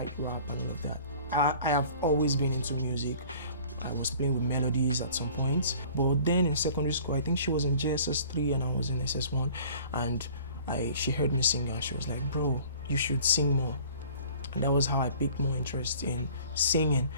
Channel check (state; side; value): inverted; both; correlation -0.49